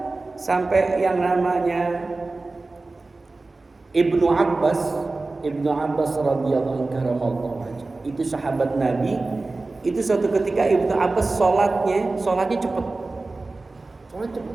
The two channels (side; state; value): left; quieter; 3.4 dB